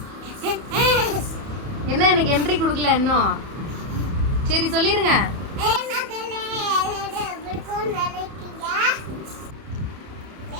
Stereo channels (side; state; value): left; late; 31 ms